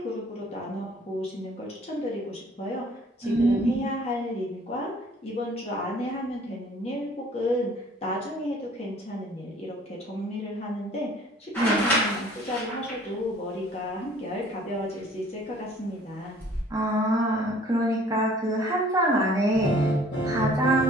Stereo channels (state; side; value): normal; both; correlation 0.54